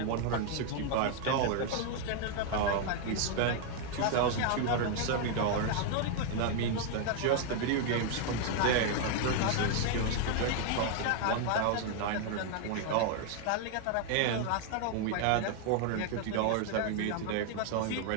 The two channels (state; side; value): different; both; correlation 0.00